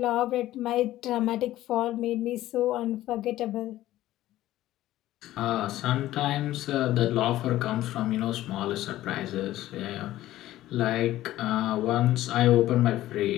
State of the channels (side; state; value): right; quieter; 14.8 dB